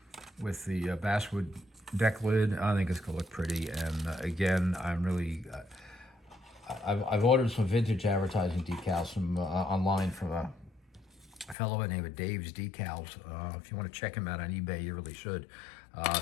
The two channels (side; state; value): right; drops out; at 11.6 s